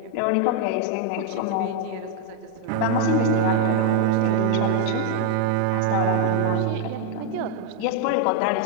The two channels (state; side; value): different; both; correlation 0.01